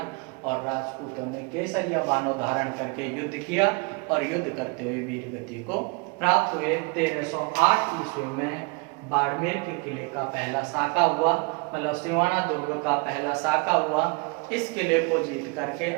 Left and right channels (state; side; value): quieter; left; 30.2 dB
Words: और राजपूतों ने केसरिया बानो धारण करके युद्ध किया और युद्ध करते हुए वीर गति को प्राप्त हुए। 1308 ईस्वी में बाड़मेर के किले का पहला साका हुआ, मतलब सिवाना दुर्ग का पहला साका हुआ। इस किले को जीत करके